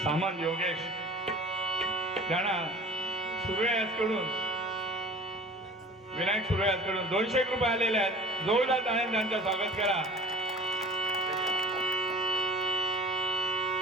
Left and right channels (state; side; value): normal; both; correlation 0.44